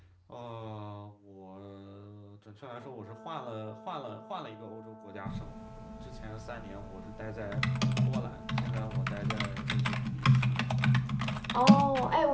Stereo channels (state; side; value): identical; both; correlation 1.00